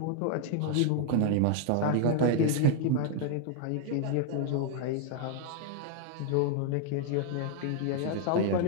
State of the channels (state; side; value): different; both; correlation 0.00